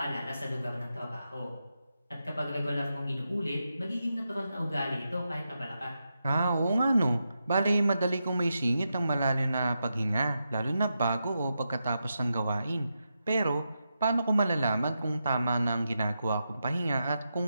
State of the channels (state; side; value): inverted; both; correlation -0.87